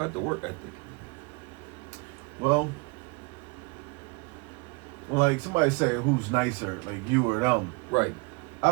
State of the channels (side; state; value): left; quieter; 29.1 dB